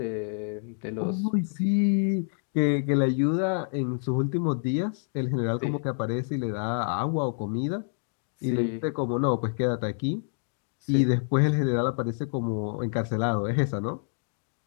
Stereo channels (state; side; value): silent; right; digital silence